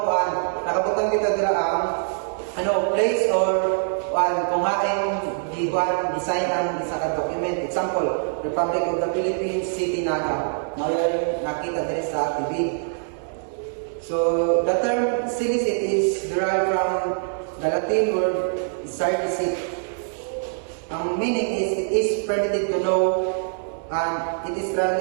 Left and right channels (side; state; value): left; silent; digital silence